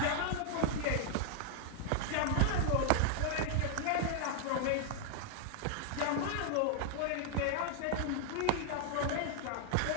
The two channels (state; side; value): different; both; correlation -0.01